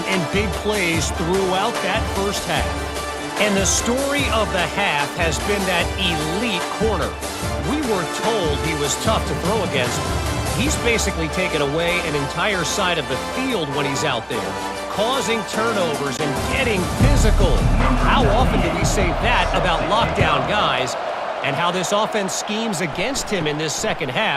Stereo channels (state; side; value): identical; both; correlation 1.00